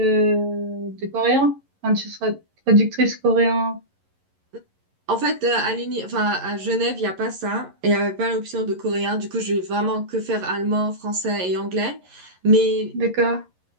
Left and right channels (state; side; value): late; left; 11 ms